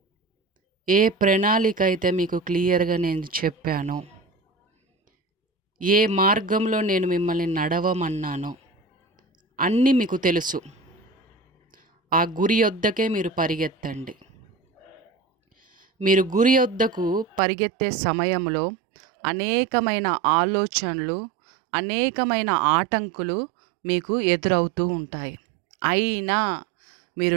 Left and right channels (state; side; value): drops out; left; at 17.4 s